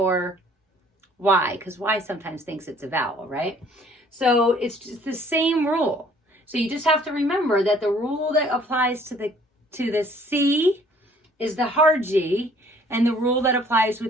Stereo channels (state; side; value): normal; both; correlation 0.57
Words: Y, because Y sometimes thinks it's a vowel, right? So it's just the same rule. So you just have to remember that the rule that applies to the C is the hard G, and the rule that applies